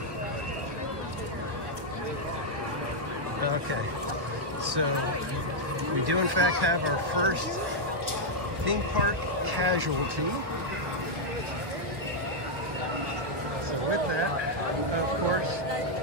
Okay, so we do in fact have our first theme park casualty. So with that, of course,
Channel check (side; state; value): left; late; 1.5 ms